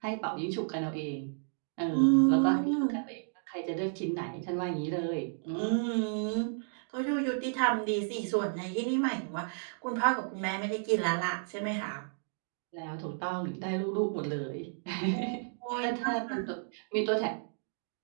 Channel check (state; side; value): silent; left; digital silence